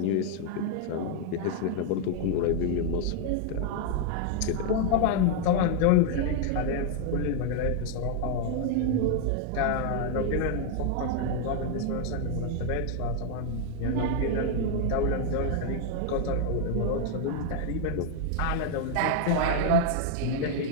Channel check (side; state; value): both; different; correlation 0.00